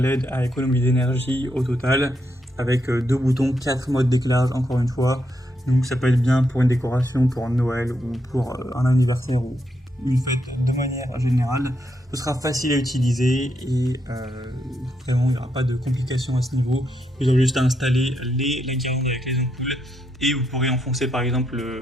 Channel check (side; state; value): both; normal; correlation 0.80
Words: à économie d'énergie au total, avec 2 boutons, 4 modes d'éclairage encore une fois, donc ça peut être bien pour une décoration, pour Noël ou pour un anniversaire ou une fête de manière générale. Ce sera facile à utiliser et vraiment il n'y aura pas de complications à ce niveau. Vous aurez juste à installer la guirlande avec les ampoules et vous pourrez enfoncer par exemple